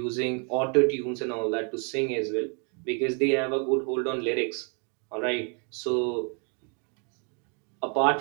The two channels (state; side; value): quieter; left; 38.2 dB